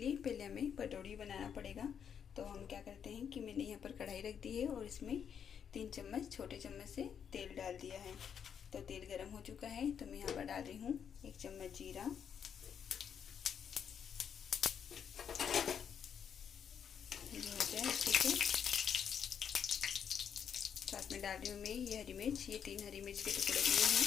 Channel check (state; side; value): quieter; right; 7.9 dB